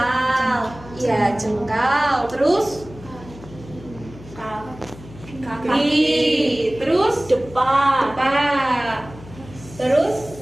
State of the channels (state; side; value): noise; left; hum, 18 dB below the sound